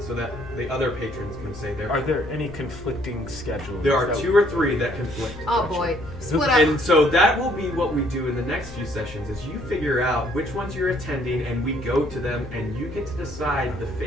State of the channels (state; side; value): normal; both; correlation 0.64